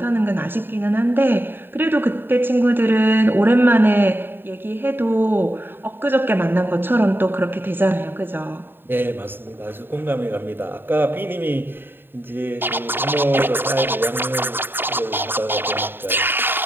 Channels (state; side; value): late; left; 0.098 ms